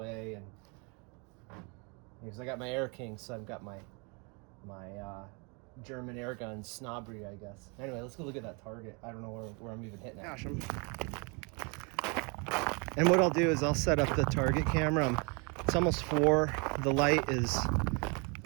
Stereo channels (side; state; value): left; quieter; 32.7 dB